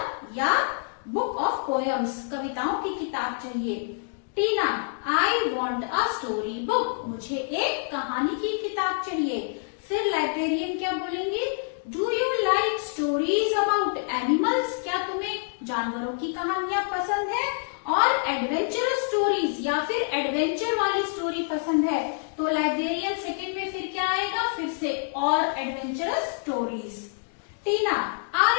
या book of poems, कविताओं की किताब चाहिए। टीना I want a story book, मुझे एक कहानी की किताब चाहिए। फिर लाइब्रेरियन क्या बोलेंगे? Do you like stories about animals? क्या तुम्हें जानवरों की कहानियां पसंद है? और एडवेंचरस स्टोरीज या फिर एडवेंचर वाली स्टोरी पसंद है? तो लाइब्रेरियन सेकंड में फिर क्या आएगा? फिर से और adventurous stories. Tina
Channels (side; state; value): right; silent; digital silence